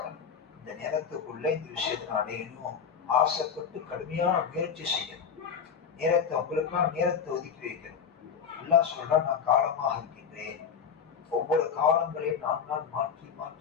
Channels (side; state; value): right; quieter; 6.9 dB